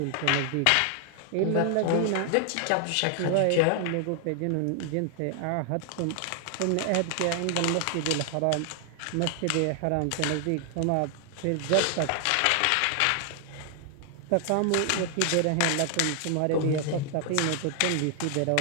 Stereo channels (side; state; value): both; different; correlation 0.00